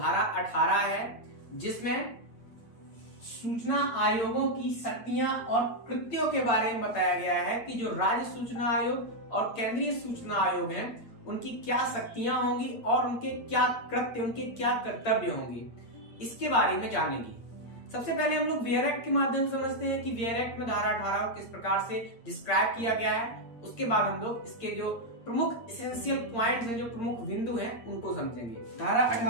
18 है, जिसमें सूचना आयोगों की शक्तियां और कृत्यों के बारे में बताया गया है कि जो राज्य सूचना आयोग और केंद्रीय सूचना आयोग हैं, उनकी क्या शक्तियां होंगी और उनके क्या कृत्य, उनके क्या कर्तव्य होंगे, इसके बारे में जानेंगे। सबसे पहले हम लोग वेयर एक्ट के माध्यम से समझते हैं कि वेयर एक्ट में धारा 18 को किस प्रकार से डिस्क्राइब किया गया है। उसके बाद हम लोग इसके जो प्रमुख एसेंशियल पॉइंट्स हैं, जो प्रमुख बिंदु हैं, उनको समझेंगे। धारा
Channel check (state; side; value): late; right; 8.7 ms